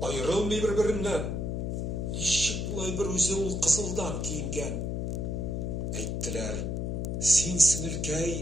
аерылмый бер-береннән. Ничек булай бер үзе ул кызылдан киенгән? Әйттеләр, син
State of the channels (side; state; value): left; noise; hum, 1 dB below the sound